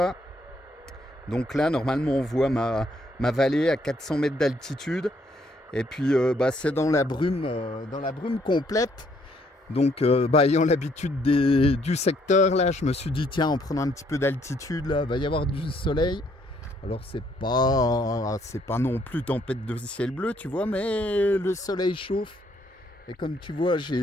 Donc là, normalement, on voit ma vallée à 400 mètres d'altitude. Et puis bah, c'est dans la brume complète. Donc bah, ayant l'habitude du secteur là, je me suis dit tiens, en prenant un petit peu d'altitude là, va y avoir du soleil. Alors c'est pas non plus tempête de ciel bleu, tu vois, mais le soleil chauffe. Et comme tu vois,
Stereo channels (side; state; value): both; normal; correlation 0.69